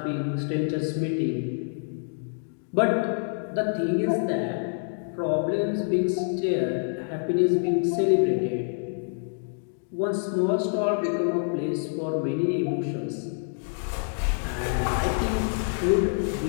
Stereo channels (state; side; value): silent; right; digital silence